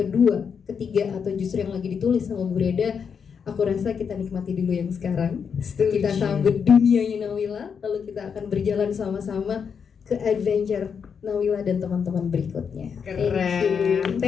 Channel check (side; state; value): right; quieter; 6.6 dB